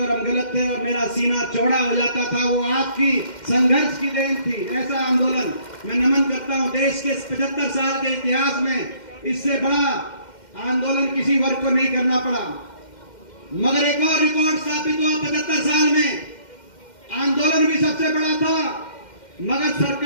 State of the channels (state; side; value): late; right; 2.1 ms